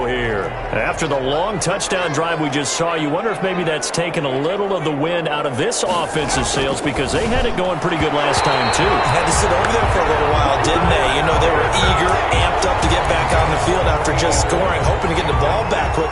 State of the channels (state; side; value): identical; both; correlation 1.00